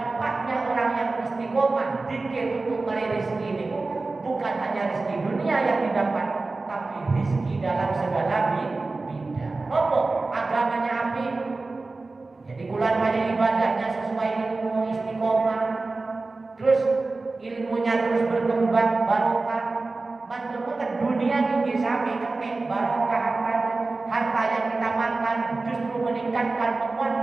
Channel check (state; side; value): quieter; left; 3.5 dB